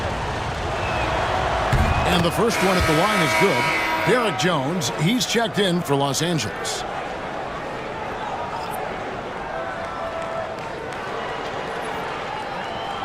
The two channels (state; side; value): identical; both; correlation 1.00